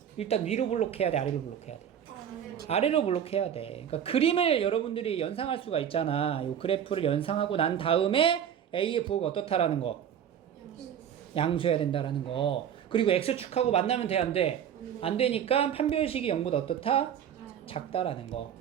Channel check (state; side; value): quieter; left; 9.1 dB